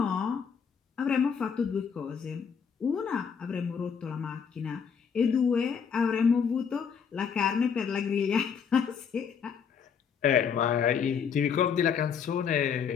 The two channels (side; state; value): right; quieter; 6.8 dB